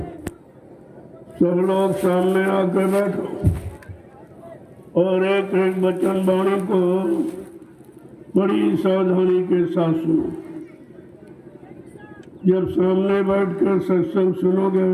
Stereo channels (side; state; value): both; identical; correlation 1.00